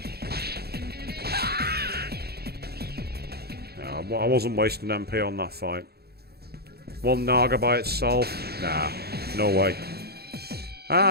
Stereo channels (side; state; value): left; late; 0.46 ms